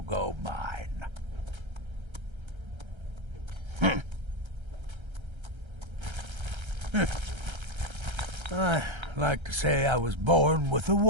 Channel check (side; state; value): left; late; 1.3 ms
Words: go mine. I like to say I was born with a